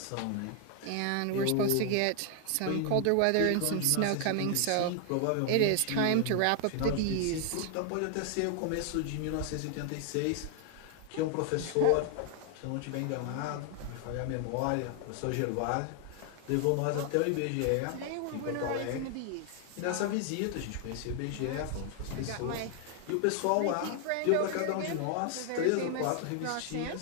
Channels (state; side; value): different; both; correlation 0.00